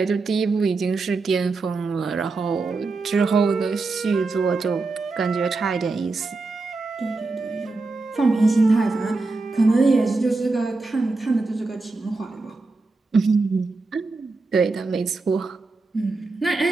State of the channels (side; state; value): left; quieter; 3.7 dB